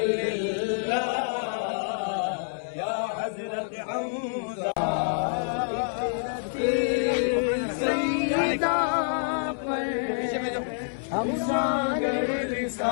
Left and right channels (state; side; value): silent; right; 60 dB below the other